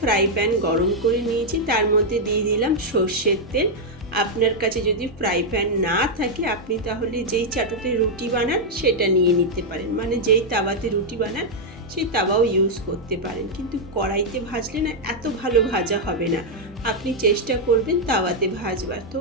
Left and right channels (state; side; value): normal; both; correlation -0.03